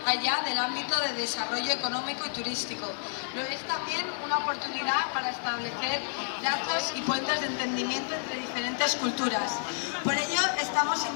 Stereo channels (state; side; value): silent; right; 58 dB below the other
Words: allá del ámbito de desarrollo económico y turístico. Lo es también una oportunidad para establecer lazos y puentes de entendimiento entre diferentes culturas. Por ello estamos